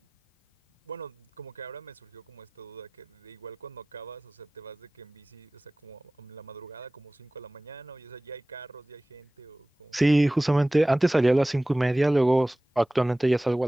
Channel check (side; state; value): both; normal; correlation 0.98